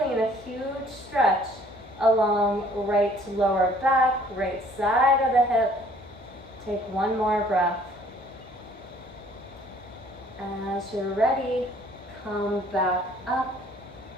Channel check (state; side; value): normal; both; correlation 0.58